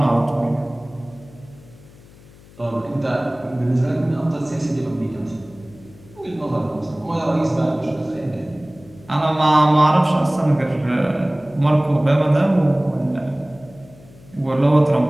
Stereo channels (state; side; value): noise; left; hum, 23 dB below the sound